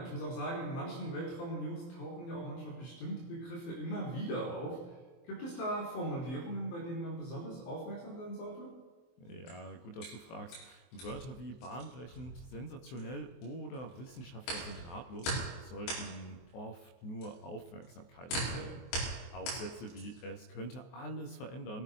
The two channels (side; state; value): right; late; 23 ms